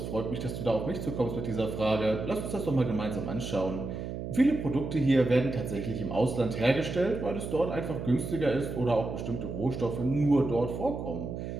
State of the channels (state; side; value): noise; right; hum, 6 dB below the sound